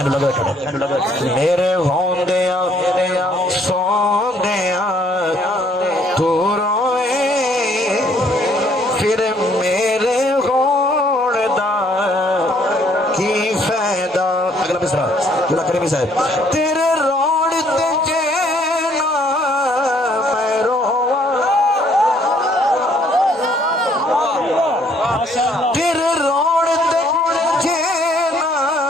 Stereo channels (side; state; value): both; normal; correlation 0.64